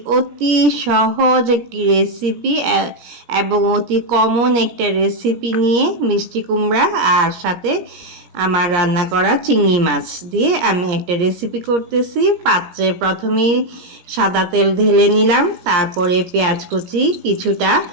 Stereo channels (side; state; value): left; late; 17 ms